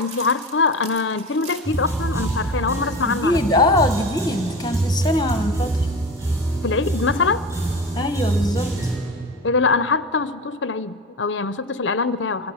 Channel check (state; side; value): normal; both; correlation 0.28